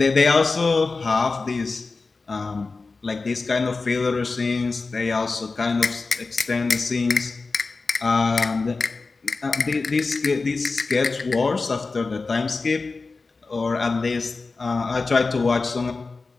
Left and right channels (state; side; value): quieter; right; 4.0 dB